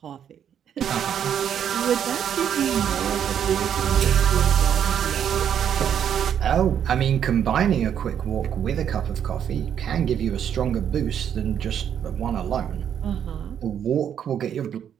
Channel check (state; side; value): quieter; left; 8.9 dB